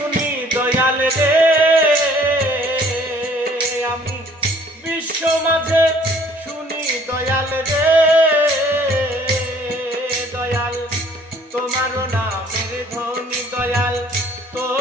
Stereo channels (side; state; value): both; normal; correlation 0.57